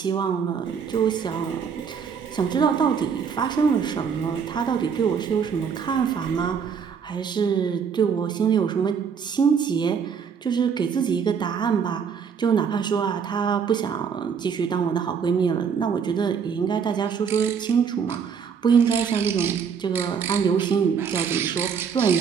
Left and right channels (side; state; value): left; quieter; 6.7 dB